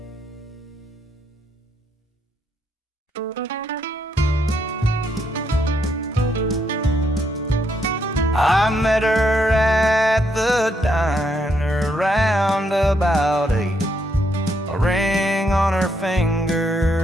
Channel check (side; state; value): both; normal; correlation 0.75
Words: I met her at the diner round about 8. A ring on her